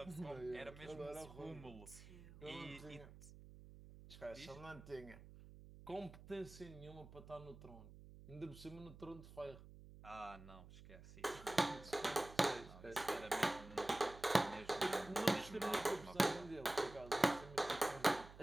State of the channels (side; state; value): right; noise; hum, 16 dB below the sound